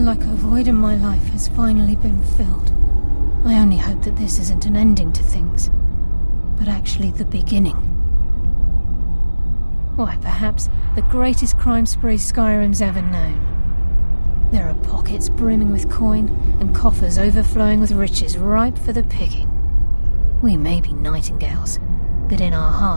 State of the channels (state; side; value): inverted; both; correlation -1.00